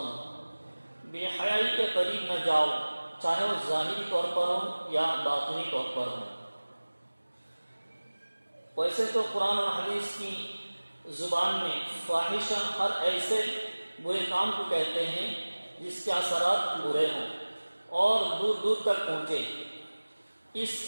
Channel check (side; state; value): both; inverted; correlation -1.00